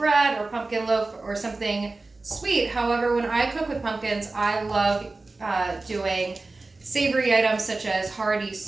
or pumpkin loaf or something sweet. However, when I cook with pumpkins, I love doing savory items such as hearty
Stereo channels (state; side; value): quieter; left; 3.4 dB